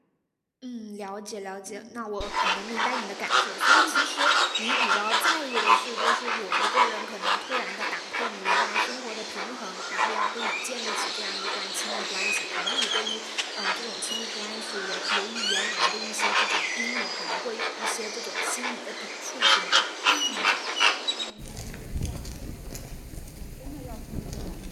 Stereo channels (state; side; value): identical; both; correlation 1.00